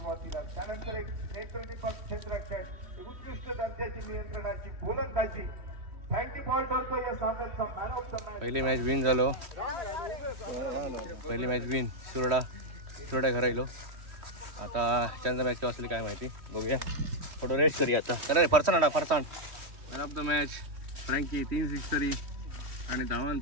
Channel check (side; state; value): left; late; 3.1 ms